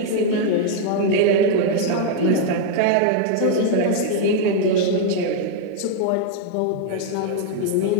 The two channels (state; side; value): different; both; correlation 0.00